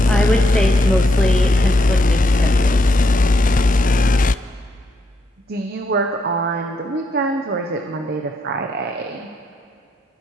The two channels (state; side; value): normal; both; correlation 0.78